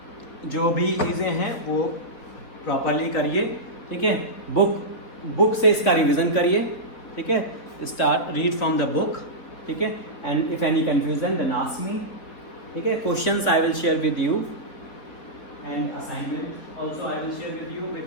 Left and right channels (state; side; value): late; right; 4.1 ms